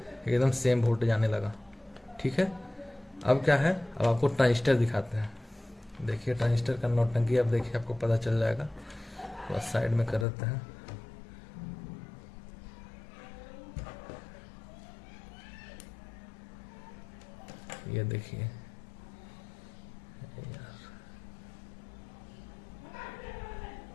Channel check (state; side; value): drops out; right; at 10.2 s